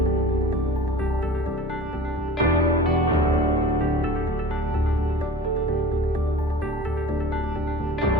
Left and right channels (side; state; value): both; normal; correlation 0.39